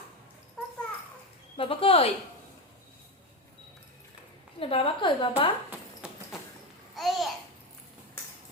বাবা কই? বাবা কই? বাবা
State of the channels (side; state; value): both; normal; correlation 0.15